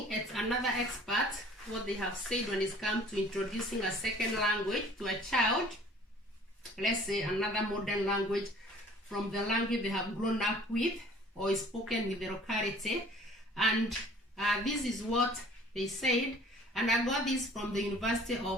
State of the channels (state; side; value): normal; both; correlation 0.51